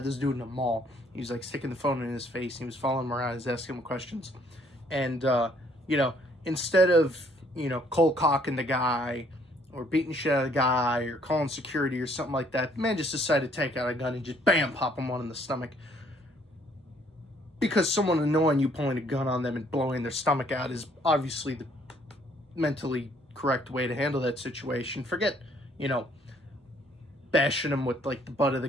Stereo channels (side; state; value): both; normal; correlation 0.64